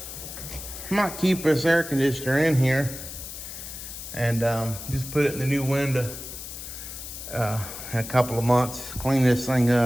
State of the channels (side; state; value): left; noise; hiss, 10 dB below the sound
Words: I might keep this air conditioner in here and just put it in the new window in a couple of months. Clean this thing